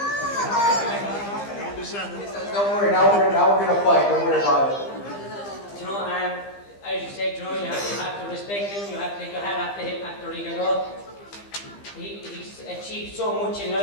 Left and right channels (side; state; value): right; late; 15 ms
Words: Don't worry, now we're gonna fight. Don't worry about it. you know, as you said, you know, you have to respect him, you have to take your hat off to him after Rigondeaux. He's achieved so much in